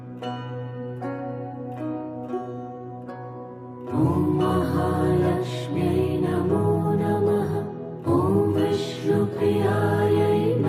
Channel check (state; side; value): identical; both; correlation 1.00